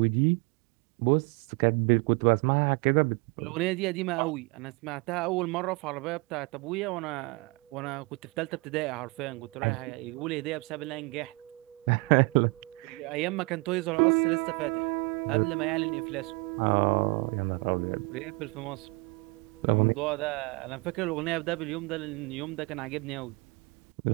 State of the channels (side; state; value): left; quieter; 27.5 dB